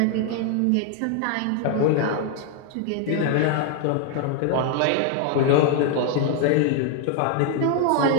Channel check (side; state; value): both; different; correlation 0.01